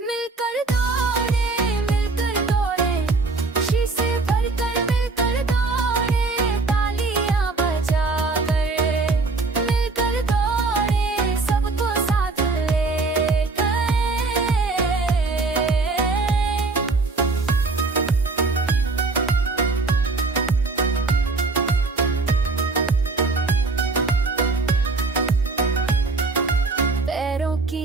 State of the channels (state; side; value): quieter; left; 3.7 dB